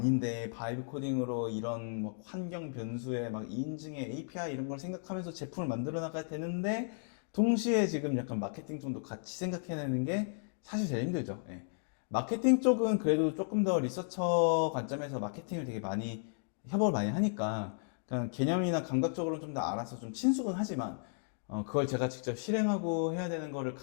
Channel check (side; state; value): right; silent; digital silence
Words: 바이브 코딩으로 이런 뭐 환경 변수에 막 인증에 API 이런 걸 생각하면서 제품을 만들어 나가야 되는데 동시에 지금 약간 마케팅 쪽도 같이 생각해내는 게 사실 제일 힘들죠. 예. 마케팅 쪽은 그래도 조금 더 리서처 관점에서 마케팅을 되게 많이 협업을 많이 하니까 그냥 개념이나 감각적으로 좀 더 알아서 좀 친숙은 하지만 그걸 제가 직접 실행하고 해야 되는 거를